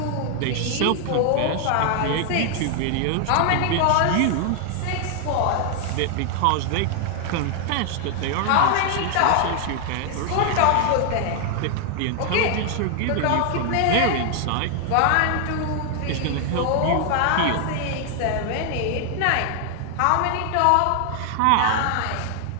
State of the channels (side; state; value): both; different; correlation 0.00